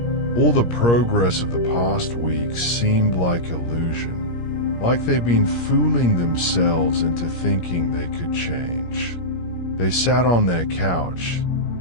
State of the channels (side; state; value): right; late; 17 ms